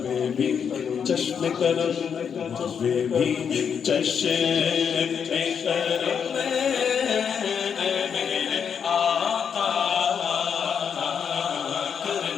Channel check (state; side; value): quieter; right; 7.2 dB